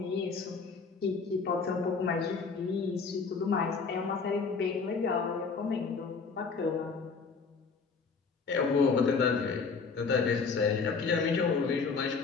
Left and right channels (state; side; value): quieter; right; 5.0 dB